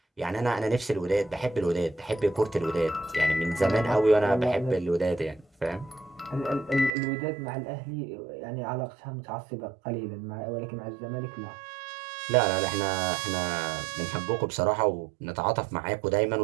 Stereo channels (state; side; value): drops out; left; at 6.9 s